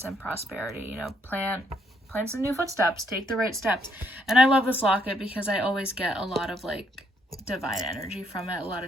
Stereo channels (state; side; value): normal; both; correlation 0.71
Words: and prosperity. You know, plant some new footsteps, take the right steps. And I love this locket because I always get a lot of like divine energy from it, a lot